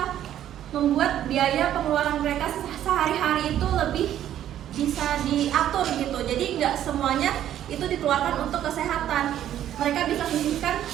membuat biaya pengeluaran mereka sehari-hari itu lebih bisa diatur gitu. Jadi nggak semuanya itu dikeluarkan untuk kesehatan. Mereka bisa sisihkan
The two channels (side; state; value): left; quieter; 11.4 dB